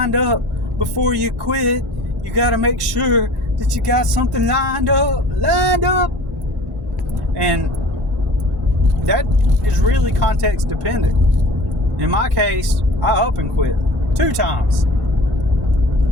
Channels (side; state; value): both; normal; correlation 0.42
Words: up before you quit. You got to make sure that you got something lined up. And that is really context dependent. In my case, I up and quit 2 times.